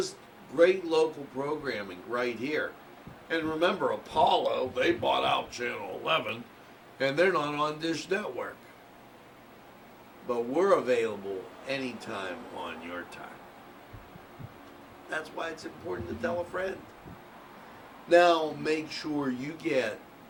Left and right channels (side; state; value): both; identical; correlation 1.00